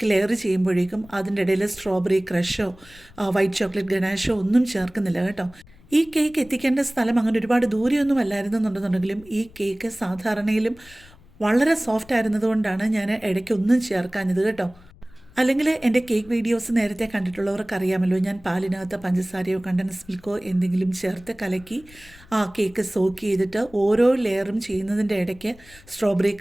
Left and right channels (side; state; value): left; noise; rumble, 24 dB below the sound